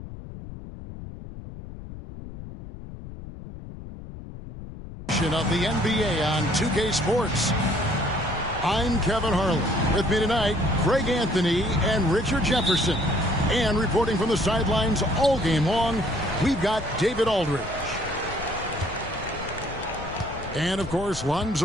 the NBA on 2K Sports. I'm Kevin Harlan. With me tonight, Greg Anthony and Richard Jefferson. And reporting from the sidelines all game long, we've got David Aldridge. And, of course,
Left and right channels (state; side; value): noise; left; rumble, 12 dB below the sound